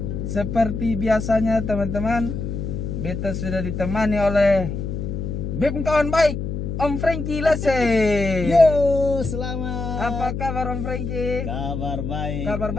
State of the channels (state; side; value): noise; left; hum, 4 dB below the sound